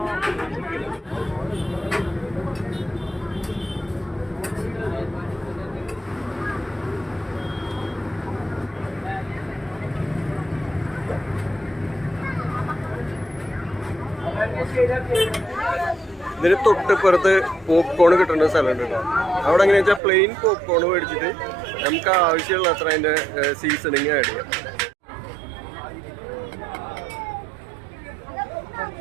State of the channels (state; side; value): drops out; left; at 20.0 s